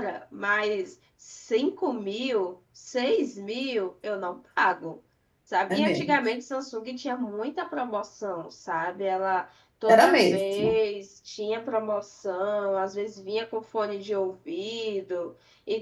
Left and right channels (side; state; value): both; identical; correlation 1.00